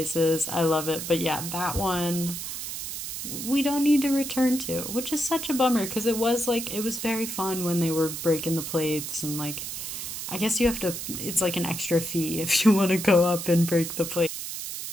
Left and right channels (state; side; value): noise; right; hiss, 6 dB below the sound